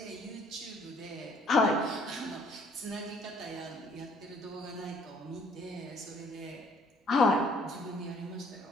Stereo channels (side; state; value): both; normal; correlation 0.61